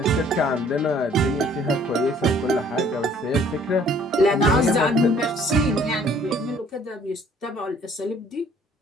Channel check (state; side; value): normal; both; correlation 0.58